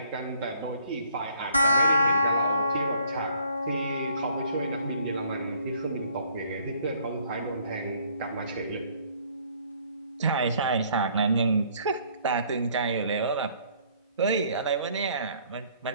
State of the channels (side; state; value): both; inverted; correlation -0.61